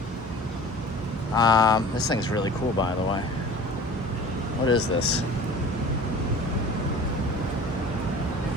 This thing's really cool, by the way. What is this?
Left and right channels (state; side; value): normal; both; correlation 0.43